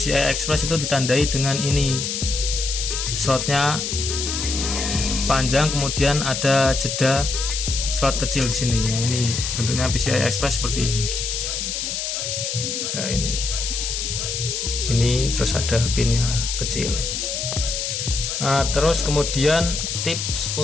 Express itu ditandai dengan ini, slotnya panjang, kemudian ada jeda slot kecil di sini. Nah, ini bentuknya PCI Express seperti ini. Nah, ini terus ada pinnya kecil. Nah, terus kemudian tips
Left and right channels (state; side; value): noise; left; hiss, 3 dB below the sound